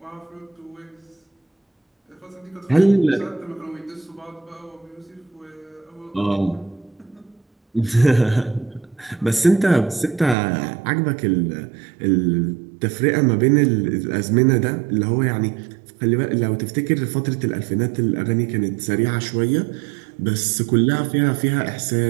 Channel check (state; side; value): drops out; left; at 10.4 s